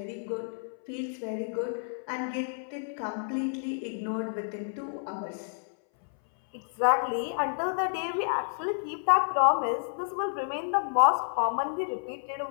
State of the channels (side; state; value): right; silent; 58 dB below the other